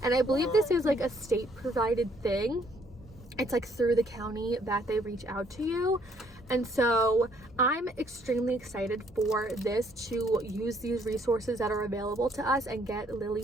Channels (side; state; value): both; normal; correlation 0.66